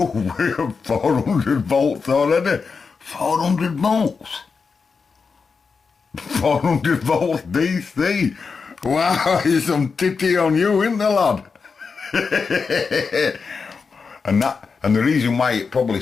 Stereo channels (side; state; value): right; quieter; 5.1 dB